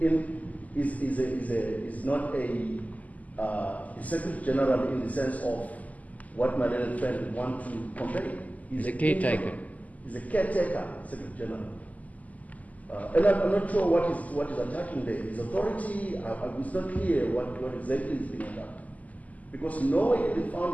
is not a Secretary General in the sense of what my learned friend would want to convey. He's a caretaker. He's a caretaker Secretary General. And I'm not sure what is attacking there. His authority, it's not clear what exactly is being attacked. Because nowhere in the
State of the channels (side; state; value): right; late; 0.075 ms